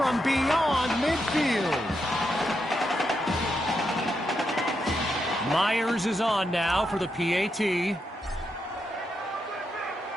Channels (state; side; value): normal; both; correlation 0.83